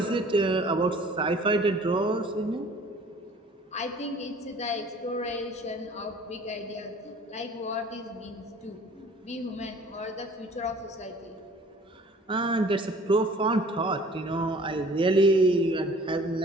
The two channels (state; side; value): normal; both; correlation 0.51